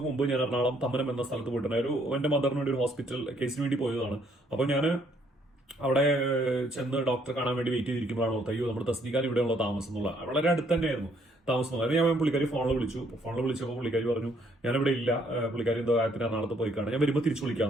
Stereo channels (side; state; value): both; normal; correlation 0.67